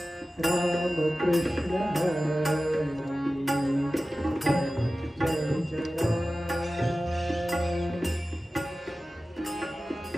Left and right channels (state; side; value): normal; both; correlation 0.95